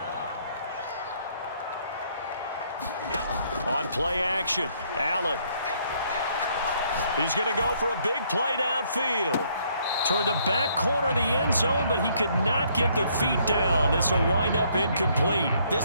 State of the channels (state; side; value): inverted; both; correlation -0.67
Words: On play action, Allen. He's going to go for a big play downfield. Toward the back corner of the end zone, but he could not get the feet down. This will wind up incomplete.